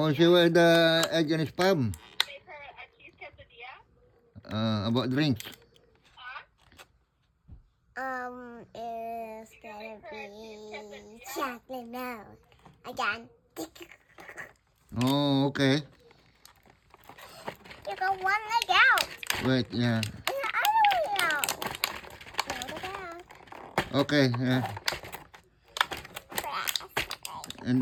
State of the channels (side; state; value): both; identical; correlation 1.00